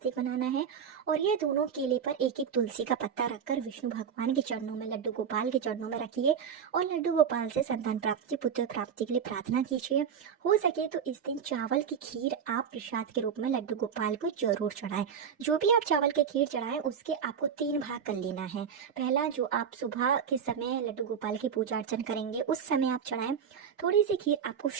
बनाना है और ये दोनों केले पर एक तुलसी का पत्ता रखकर विष्णु भगवान के चरणों में, लड्डू गोपाल के चरणों में रखिए और लड्डू गोपाल से संतान प्राप्ति, पुत्र प्राप्ति के लिए प्रार्थना कीजिए। हो सके तो इस दिन चावल की खीर आप प्रसाद के रूप में लड्डू गोपाल को जरूर चढ़ाएं। जो भी आप चावल की खीर चढ़ाएं उसके आपको 3 भाग कर लेना है। पहला, जो आप सुबह के समय लड्डू गोपाल की पूजा अर्चन करेंगे उस समय आप चढ़ाएं। थोड़ी सी खीर आपको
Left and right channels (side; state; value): left; quieter; 7.4 dB